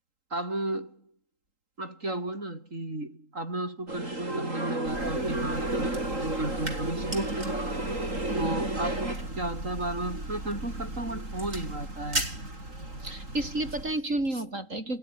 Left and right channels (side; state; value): left; late; 3.8 ms